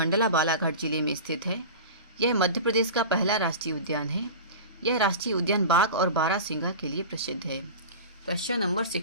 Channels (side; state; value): both; inverted; correlation -0.31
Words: बालाघाट जिले में स्थित है। यह मध्य प्रदेश का पहला राष्ट्रीय उद्यान है। यह राष्ट्रीय उद्यान बाघ और बारहसिंगा के लिए प्रसिद्ध है। क्वेश्चन नंबर